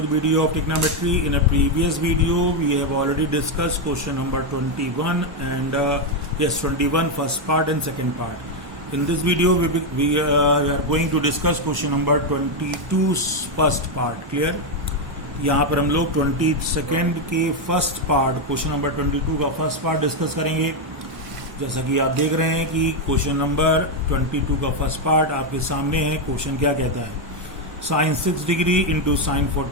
video of trigonometry. In a previous video, we have already discussed question number 21 and 21 first part and second part. In this video, we are going to discuss question number 22 first part. Clear? यहाँ पर हम लोग 22nd के first part question number 22 का first part discuss करेंगे। जैसा कि आप देख रहे हैं कि क्वेश्चन नंबर 22 का फर्स्ट पार्ट आपके सामने है। क्वेश्चन क्या कहता है? Sine 6 degree into sine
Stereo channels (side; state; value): left; late; 1.0 ms